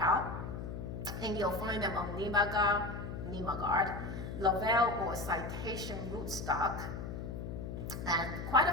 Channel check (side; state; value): left; noise; hum, 6 dB below the sound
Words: and you'll find them on Nimagard, Lovell, or Citation rootstock. And quite